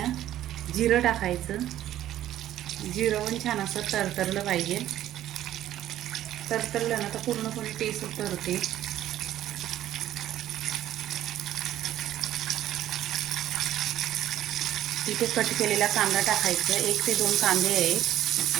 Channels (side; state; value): left; quieter; 12.7 dB